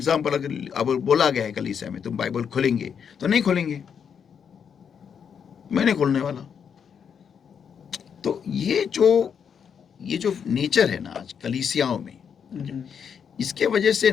अगर अब बोला गया है कलीसिया में तुम बाइबल खोलेंगे, तो नहीं खोलेंगे, मैं नहीं खोलने वाला। तो ये जो नेचर है ना आज कलीसियाओं में, इसके वजह से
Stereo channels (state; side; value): quieter; right; 7.3 dB